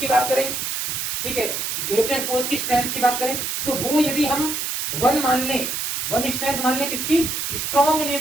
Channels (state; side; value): noise; right; hiss, 2 dB below the sound